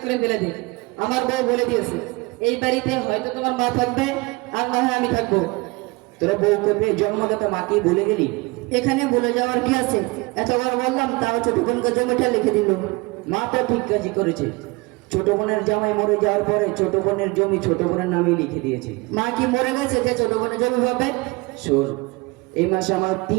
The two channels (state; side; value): quieter; left; 24.8 dB